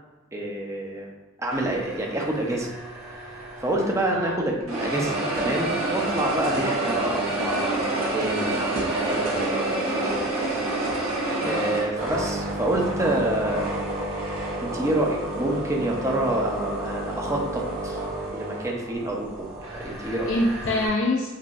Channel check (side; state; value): both; normal; correlation 0.37